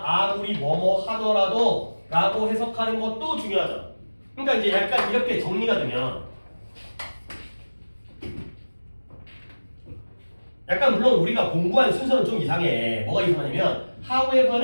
아무리 뭐뭐 하더라도 라고 해석하는 것도 중요하잖아. 그러니까 이제 약간 이렇게 정리가 되면 약간 물론 우리가 공부한 순서는 좀 이상해. 뭐가 이상하냐면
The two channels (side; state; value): both; inverted; correlation -1.00